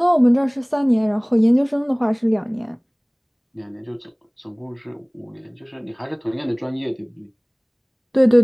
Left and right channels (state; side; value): identical; both; correlation 1.00